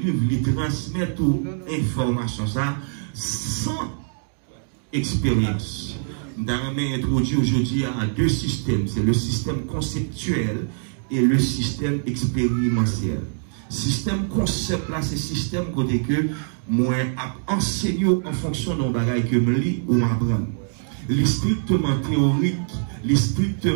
il transmet toute information, ça, sans expérience. Nous avons introduit aujourd'hui à 2 systèmes. C'est le système conceptuel et le système expérientiel. Système concept là, c'est système côté que moi enseigné en fonction d'un bagage que je lis ou m'apprends. Les strictement théorique, les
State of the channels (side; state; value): left; silent; digital silence